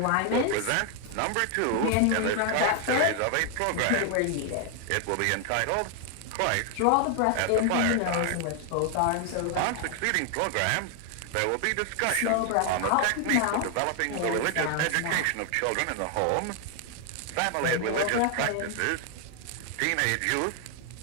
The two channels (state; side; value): different; both; correlation 0.00